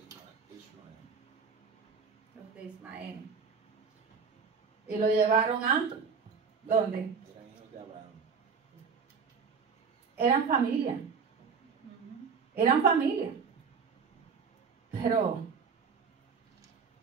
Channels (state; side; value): quieter; left; 5.7 dB